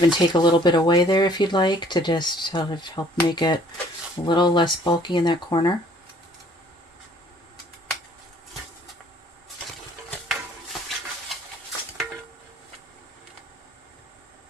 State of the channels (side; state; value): both; normal; correlation 0.58